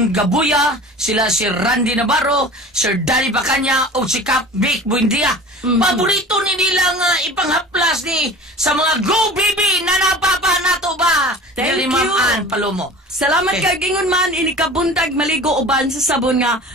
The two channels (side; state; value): both; normal; correlation 0.40